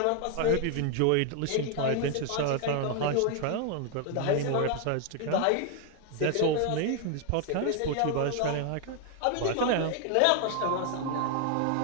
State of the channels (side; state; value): both; different; correlation 0.00